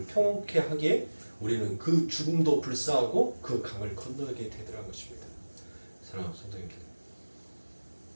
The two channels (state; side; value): inverted; both; correlation -1.00